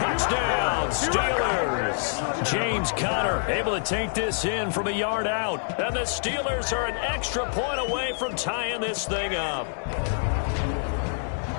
Steelers. James Conner able to take this in from a yard out. And the Steelers are an extra point away from tying this thing up.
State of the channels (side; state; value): right; silent; digital silence